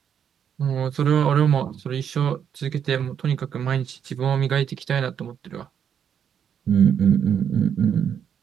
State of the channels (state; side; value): quieter; left; 8.3 dB